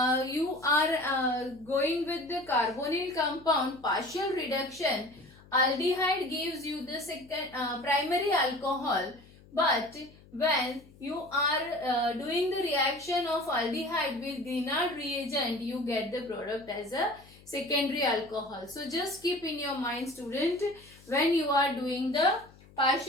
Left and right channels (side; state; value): left; noise; hum, 24 dB below the sound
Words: you are going with the carbonyl compound partial reduction, aldehyde gives you the second primary alcohol, but when you are doing the reaction of aldehyde with Grignard reagent, you get the product as a secondary alcohol. So just keep in your mind, student, when you are doing the